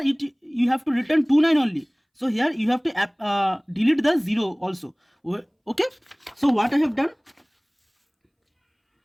you have to return 2 9 only, so here you have to delete the 0 also. Okay, so what I have done,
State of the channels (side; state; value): both; identical; correlation 1.00